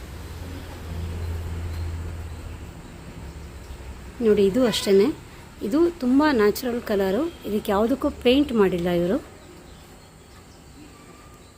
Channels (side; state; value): both; identical; correlation 1.00